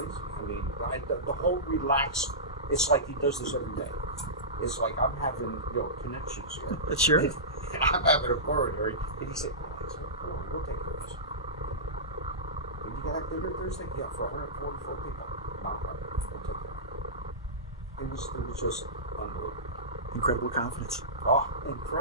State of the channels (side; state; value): both; normal; correlation -0.18